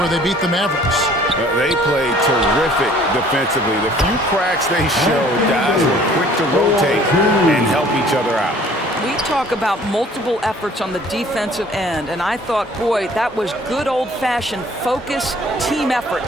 they beat the Mavericks. They played terrific defensively. The few cracks they showed, guys were quick to rotate and help each other out. We talk about multiple efforts on the defensive end, and I thought, boy, that was good old-fashioned focus, team effort.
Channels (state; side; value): normal; both; correlation 0.54